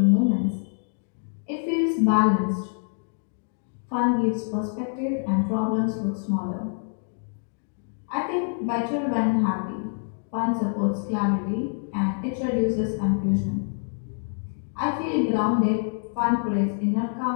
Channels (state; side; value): silent; right; 61 dB below the other